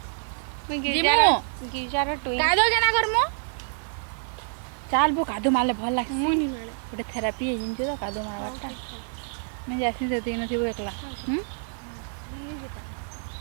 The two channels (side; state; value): left; silent; digital silence